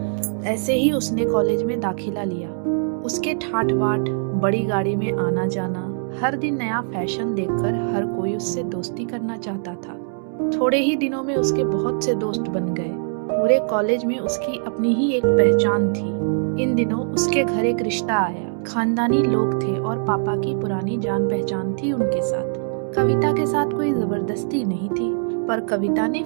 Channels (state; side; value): silent; left; 64 dB below the other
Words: ऐसे ही उसने कॉलेज में दाखिला लिया। उसके ठाट बाट, बड़ी गाड़ी में आना जाना, हर दिन नया फैशन देखकर हर कोई उससे दोस्ती करना चाहता था। थोड़े ही दिनों में उसके बहुत से दोस्त बन गए। पूरे कॉलेज में उसकी अपनी ही एक पहचान थी। इन दिनों उसके घर एक रिश्ता आया। खानदानी लोग थे और पापा की पुरानी जान पहचान थी उनके साथ। कविता के साथ कोई जबरदस्ती नहीं थी, पर कविता ने